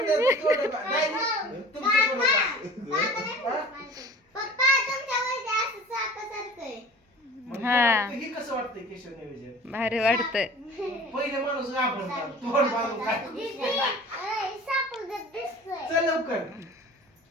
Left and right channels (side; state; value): both; normal; correlation 0.42